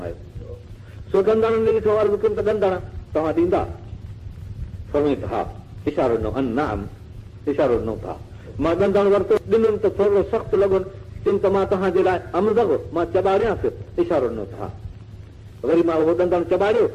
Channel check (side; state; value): both; identical; correlation 1.00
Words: सो ॾंदड़नि ने ॾिठो अर्ज़ु कयुमि त ॾंदड़ तव्हां ॾींदा? फरमाई त हा। इशारो ॾिनो, नाम इशारो ॾिनो था। मां ॾंदड़ वरितो, ॾिनुमि त थोरो सख़्तु लॻो, चयुमि त मां तव्हांजे लाइ अमज़ मां चॿारियांसि, इशारो ॾिनो था। वरी मां उहो ॾंदड़ चॿारियो,